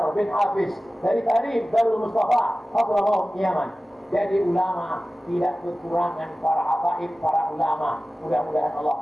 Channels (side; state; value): both; normal; correlation 0.96